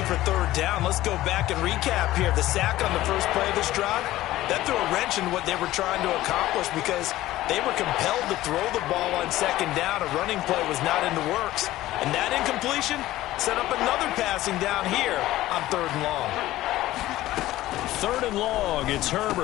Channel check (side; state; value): right; quieter; 15.7 dB